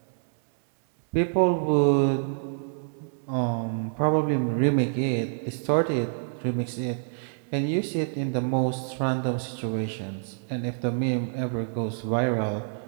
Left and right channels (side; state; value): left; silent; digital silence